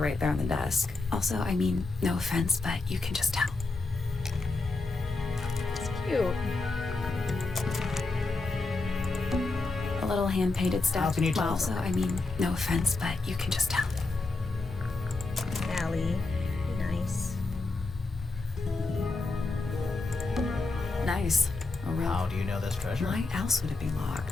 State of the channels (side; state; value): right; quieter; 3.5 dB